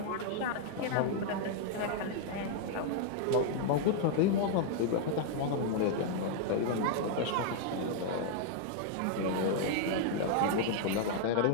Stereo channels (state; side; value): different; both; correlation 0.00